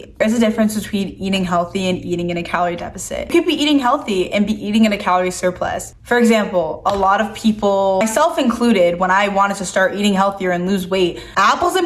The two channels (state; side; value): identical; both; correlation 1.00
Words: There's a difference between eating healthy and eating in a calorie deficit. You could be eating healthy and be eating in a calorie surplus. For example, a lot of people, myself included, when I wanted to start eating healthier and lose weight, apples